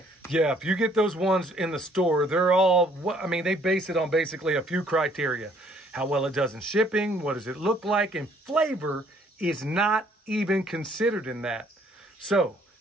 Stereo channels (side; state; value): both; normal; correlation 0.62